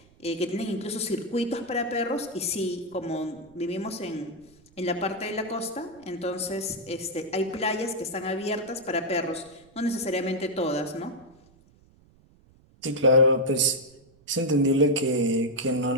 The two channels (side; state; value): right; noise; rumble, 29 dB below the sound